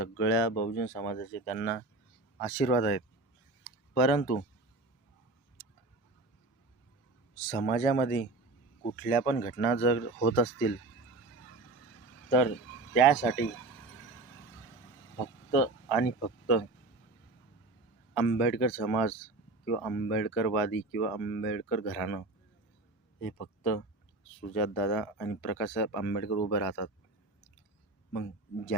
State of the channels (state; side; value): quieter; left; 3.1 dB